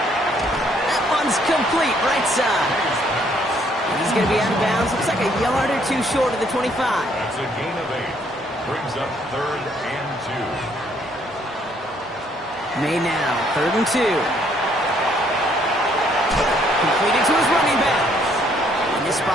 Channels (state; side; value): normal; both; correlation 0.67